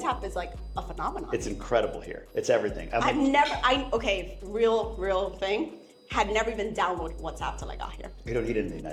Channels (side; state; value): both; identical; correlation 1.00